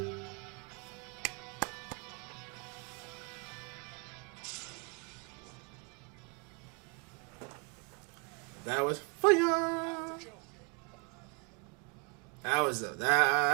That was fire. That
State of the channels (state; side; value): quieter; left; 34.4 dB